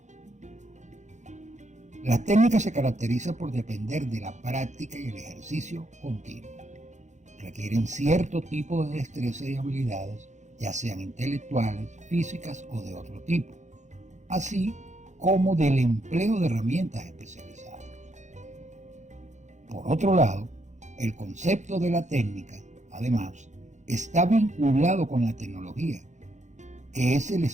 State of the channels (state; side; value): late; left; 0.34 ms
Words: La técnica se caracteriza por depender de la práctica y el ejercicio continuo. Requieren cierto tipo de destreza y habilidades, ya sean intelectuales, físicas o de otro tipo, así como del empleo de herramientas especializadas. Por otro lado, el concepto de la técnica, además, está vinculado con la tecnología, que es el